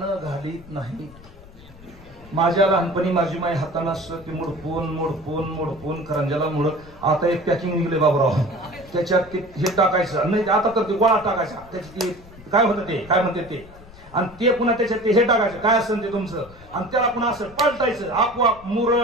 घालीत नाही. माझ्या लहानपणी माझी माई हातानं असं ते मोडपून करंज्याला मुरड. आता एक पॅकिंग निघले बाबूराव, त्याच्यात ते हे टाकायचं नाही, आता तर ते गोळा टाकायचा. त्याच्यात ते काय होतं, ते काय म्हणते ते, आणि ते पुन्हा त्याच्यात ते हे टाकायचं काय असेल ते तुमचं, आणि त्याला पुन्हा असं पलटायचं. आपोआप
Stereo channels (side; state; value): left; noise; rumble, 21 dB below the sound